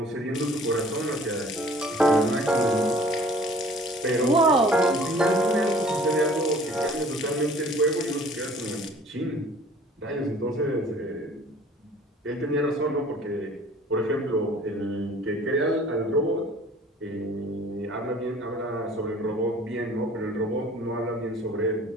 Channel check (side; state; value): both; normal; correlation 0.51